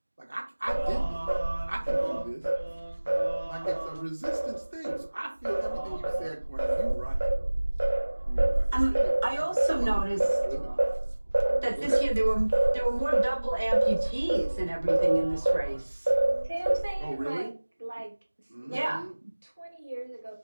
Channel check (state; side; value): inverted; both; correlation -1.00